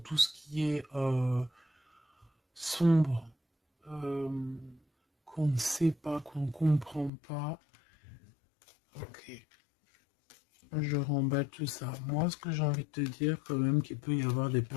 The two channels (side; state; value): right; drops out; at 7.1 s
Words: ce qui est sombre, qu'on ne sait pas, qu'on ne comprend pas. Ok. Je remballe tout ça. Moi, ce que j'ai envie de te dire, quand même, qu'il peut y avoir des